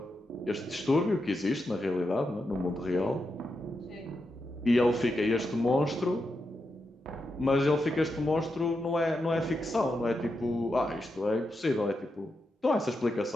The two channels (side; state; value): both; normal; correlation 0.86